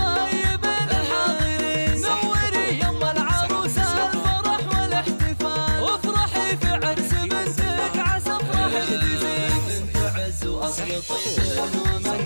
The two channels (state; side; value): inverted; both; correlation -1.00